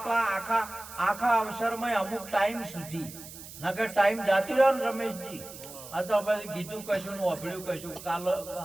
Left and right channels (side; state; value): right; noise; hiss, 15 dB below the sound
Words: અવસરમાં અમુક ટાઈમ સુધી, નકર ટાઈમ જાતી રહ્યો ને રમેશજી, આ તો પછી કીધું કશું ને ઓભળ્યું કશું.